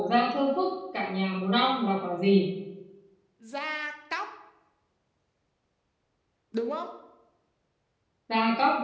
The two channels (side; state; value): both; identical; correlation 1.00